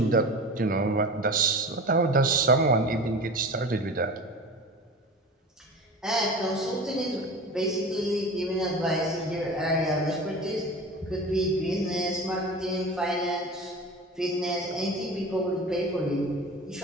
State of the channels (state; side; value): normal; both; correlation 0.33